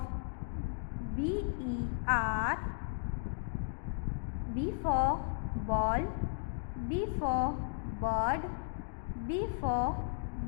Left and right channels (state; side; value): silent; right; digital silence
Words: BE are B for ball, B for bird, B for